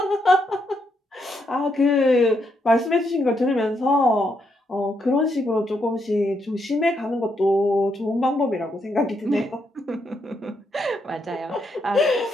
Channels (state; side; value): normal; both; correlation 0.78